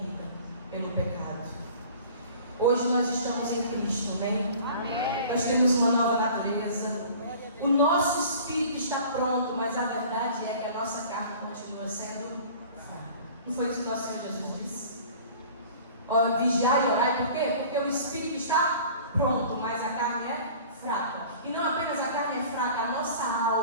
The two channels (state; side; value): inverted; both; correlation -0.45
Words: pelo pecado. Hoje nós estamos em Cristo, amém? Nós temos uma nova natureza. O nosso espírito está pronto, mas a verdade é que a nossa carne continua sendo fraca. Não foi isso que nosso Senhor Jesus disse? Vigiar e orar, por quê? Porque o espírito está pronto, mas a carne é fraca. E não apenas a carne é fraca, a nossa